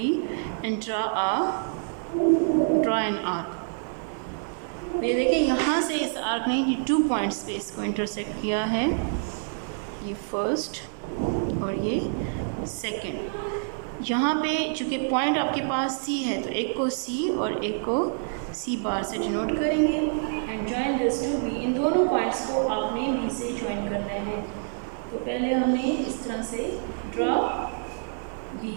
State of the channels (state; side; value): silent; left; digital silence